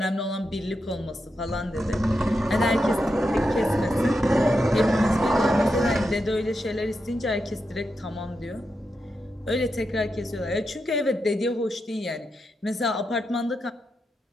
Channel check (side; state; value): both; normal; correlation 0.86